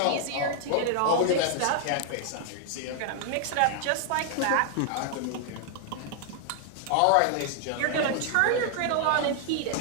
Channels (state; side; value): different; both; correlation 0.00